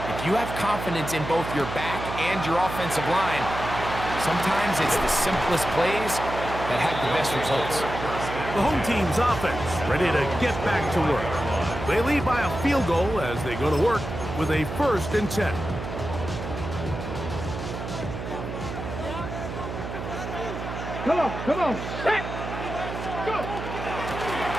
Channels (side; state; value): right; noise; hum, 7 dB below the sound